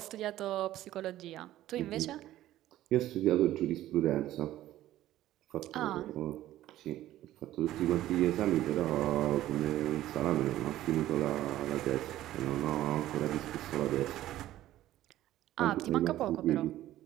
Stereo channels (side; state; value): left; quieter; 14.2 dB